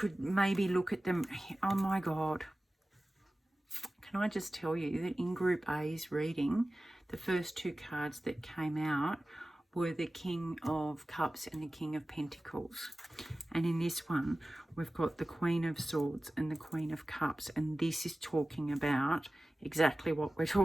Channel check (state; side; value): normal; both; correlation 0.96